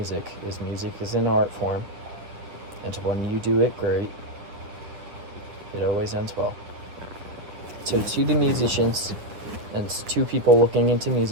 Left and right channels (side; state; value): left; late; 9.1 ms